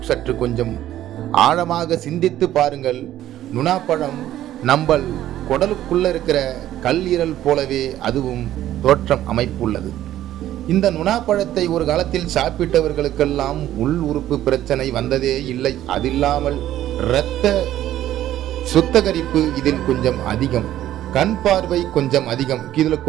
சற்று கொஞ்சம் ஆழமாக சிந்தித்து பாருங்கள். நுணாப்பழம் நம்பல் குடலுக்குள்ள இருக்கிற கல்லீரல் போலவே அதுவும் தோற்றம் அமைப்புள்ளது. இந்த நுணாப்பழத்தை ஒரு காலத்தில் சாப்பிட்டவர்களுக்கெல்லாம் உள் உறுப்பு பிரச்சனை வந்ததே இல்லை. அதில்லாமல் இரத்த சுத்தகரிப்பு இதில் கொஞ்சம் அதிகம், கண் பார்வை கொஞ்சம் அதிகம், இதில்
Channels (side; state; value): left; quieter; 12.9 dB